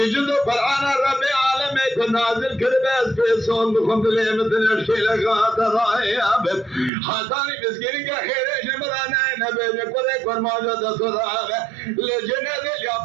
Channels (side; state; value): left; drops out; at 6.9 s